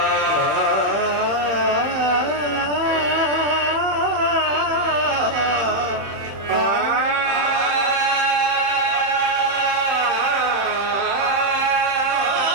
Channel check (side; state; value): left; late; 31 ms